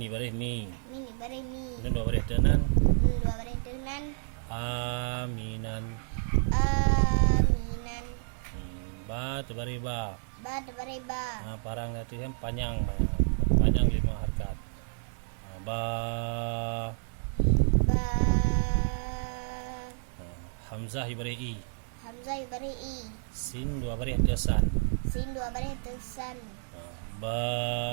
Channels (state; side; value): silent; left; digital silence